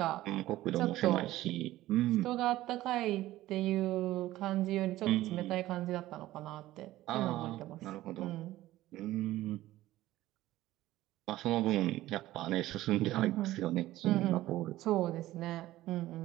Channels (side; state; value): left; quieter; 15.8 dB